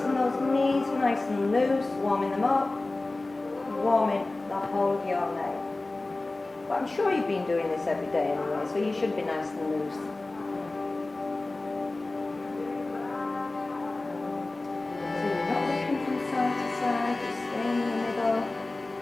and those knees nice and loose, warming them up, warming the whole of your leg. But I'm sure you've been doing this every day anyway, so you should be nice and loose. So you're not looking from side to side, just staying in the middle.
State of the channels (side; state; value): right; quieter; 3.0 dB